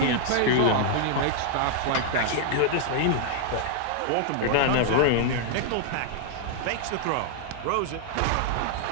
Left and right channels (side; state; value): both; different; correlation -0.01